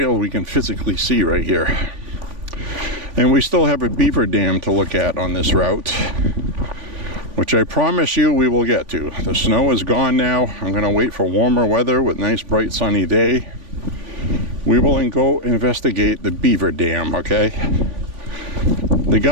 we can physically see right here. And we still have a beaver dam to look at on this route, which I promise you we will get to. The snow is gone now. I'm going to wait for warmer weather with nice bright sunny day. We will go investigate the beaver dam, okay? The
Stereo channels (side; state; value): left; late; 3.5 ms